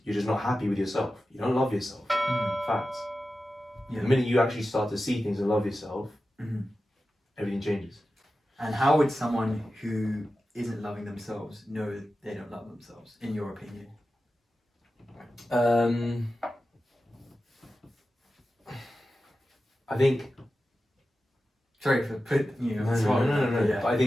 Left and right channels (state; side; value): normal; both; correlation 0.93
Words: you're just not happy with yourself. You don't love yourself. Facts. Yeah. The minute you actually start to see things and love yourself, everything changes. And how would someone who isn't loving themselves know they don't love themselves, in your opinion? I think. Sorry for putting you on the No. spot. Yeah. But I